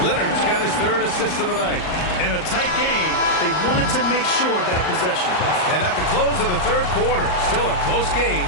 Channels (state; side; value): late; right; 38 ms